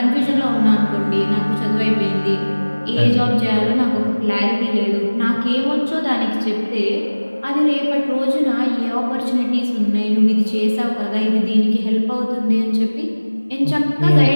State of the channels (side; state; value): both; inverted; correlation -1.00